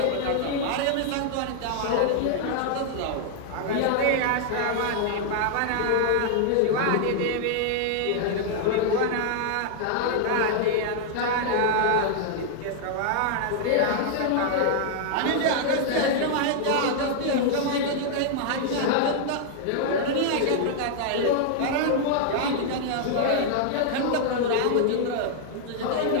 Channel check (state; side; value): different; both; correlation -0.01